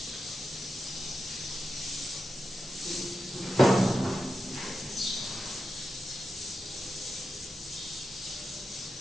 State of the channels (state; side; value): normal; both; correlation 0.89